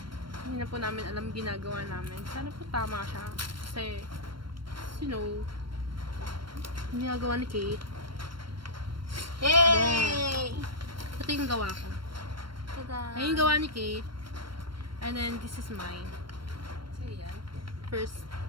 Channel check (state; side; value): late; left; 0.73 ms